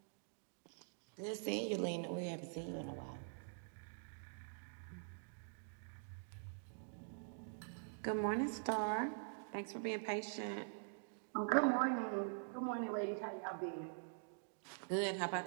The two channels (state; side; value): silent; left; digital silence